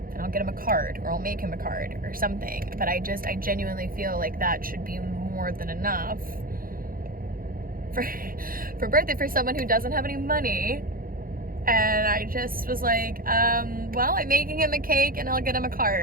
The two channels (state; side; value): late; left; 0.42 ms